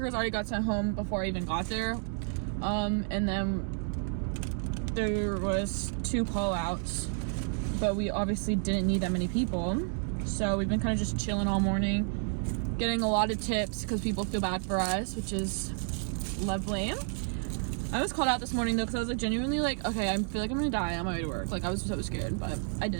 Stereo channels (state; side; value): silent; left; 57 dB below the other